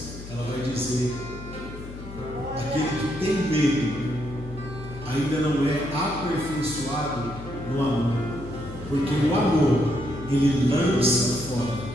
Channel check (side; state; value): left; noise; hum, 13 dB below the sound